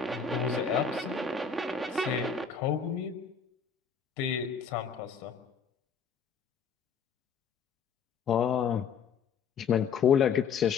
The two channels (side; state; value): right; quieter; 6.2 dB